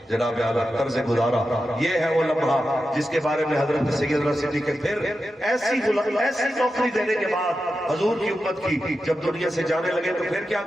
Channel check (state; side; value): normal; both; correlation 0.90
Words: جناب اعلیٰ طرز گزارا، یہ ہے وہ لمحہ جس کے بارے میں حضرت سیدنا صدیق پھر ایسی نوکری دینے کے بعد حضور کی امت کی جب دنیا سے جانے لگے تو پھر کیا